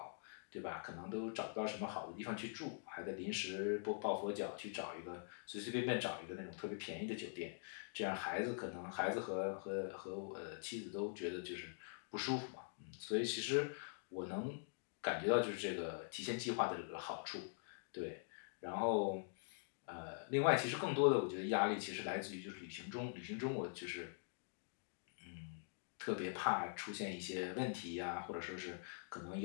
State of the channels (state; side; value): silent; right; digital silence